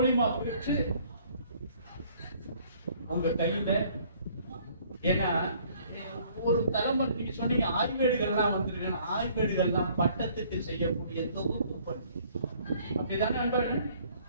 பெற்று உங்க கையில. ஏன்னா ஒரு தலைமுறை நீங்க சொன்னீங்க ஆய்வேடுகள்லாம் வந்திருக்கேன். ஆய்வேடுகள்லாம் பட்டத்துக்கு செய்யக்கூடிய தொகுப்பு பணி. அப்படிதானே நண்பர்கள்?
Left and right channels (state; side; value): inverted; both; correlation -0.59